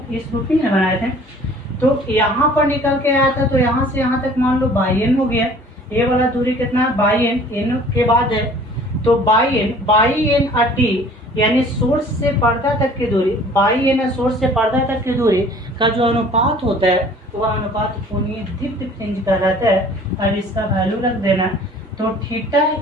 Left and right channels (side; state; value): both; normal; correlation 0.51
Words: इस रूपी में बनाए थे। तो यहाँ पर निकल के आया था, तो यहाँ से यहाँ तक मान लो बाई एन हो गया। ये वाला दूरी कितना है, बाई एन के बाद है, तो बाई एन टी, यानी सोर्स से पर्दा तक की दूरी, बाई एन सोर्स से पर्दा तक की दूरी का जो अनुपात होता है वह अनुपात कोणीय दीप्ति फ्रिंज कहलाता है। अब इसका वैल्यू रख देना, तो थीटा